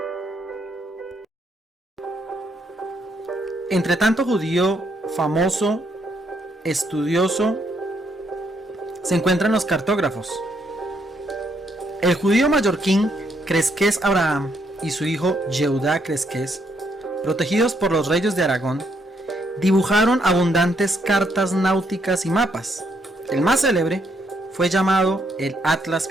Entre tanto judío famoso, estudioso, se encuentran los cartógrafos. El judío mallorquín Cresques Abraham y su hijo Yehudá Cresques, protegidos por los reyes de Aragón, dibujaron abundantes cartas náuticas y mapas. El más célebre fue llamado el Atlas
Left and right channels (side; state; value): both; normal; correlation 0.73